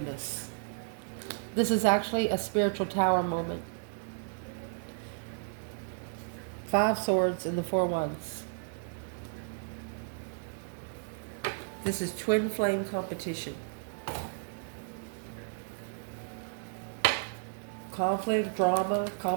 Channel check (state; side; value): silent; left; digital silence